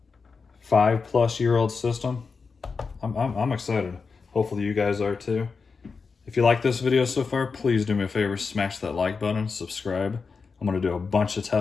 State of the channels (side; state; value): right; quieter; 4.9 dB